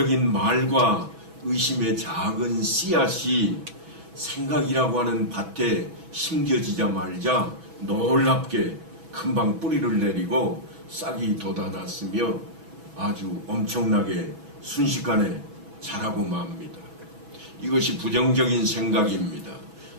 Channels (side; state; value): left; late; 6.1 ms